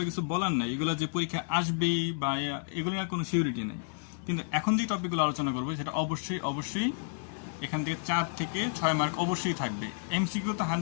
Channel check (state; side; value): silent; right; digital silence